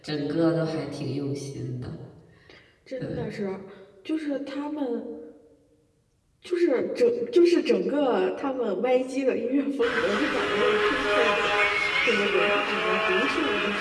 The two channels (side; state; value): both; identical; correlation 1.00